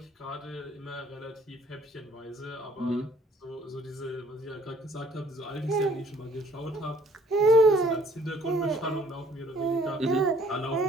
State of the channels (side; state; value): both; normal; correlation 0.59